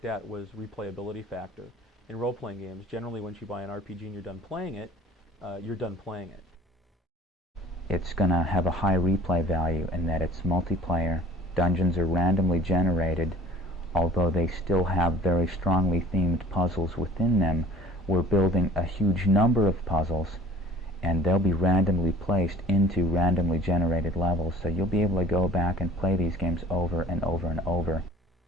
at was replayability factor. In role-playing games, generally once you buy an RPG and you're done playing it, you're done playing it. It's going to have a high replay value in that it's multiplayer. Dungeons are randomly generated. Although they still have very strongly themed puzzles within them, we're building a huge number of puzzles, and they'll be randomly placed into randomly generated levels, so you'll be able to go back and play these games over and over and over.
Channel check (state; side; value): normal; both; correlation 0.48